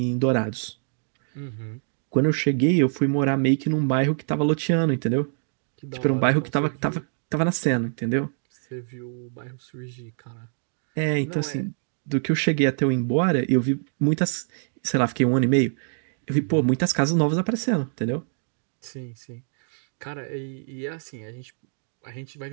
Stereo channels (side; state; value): left; silent; digital silence